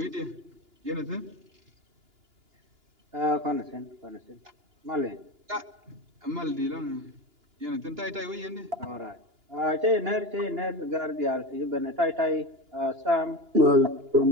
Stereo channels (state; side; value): late; left; 2.9 ms